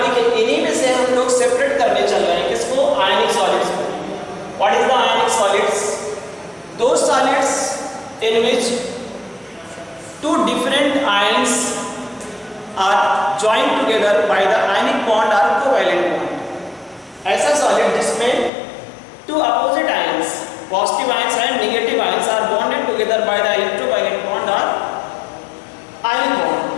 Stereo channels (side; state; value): right; drops out; at 18.5 s